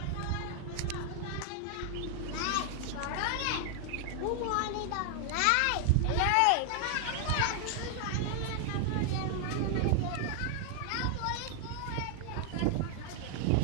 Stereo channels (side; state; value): both; different; correlation 0.00